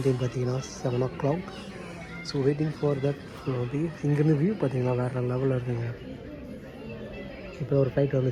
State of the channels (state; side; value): identical; both; correlation 1.00